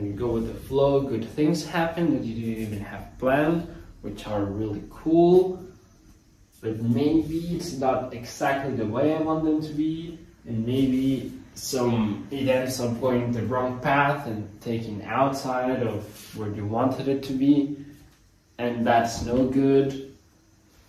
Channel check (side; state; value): both; identical; correlation 1.00